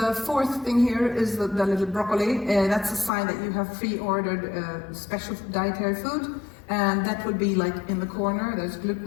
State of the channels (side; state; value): right; drops out; at 3.1 s